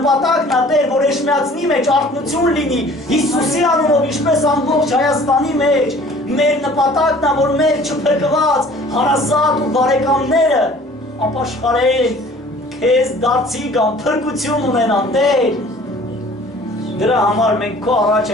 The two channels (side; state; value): both; normal; correlation 0.50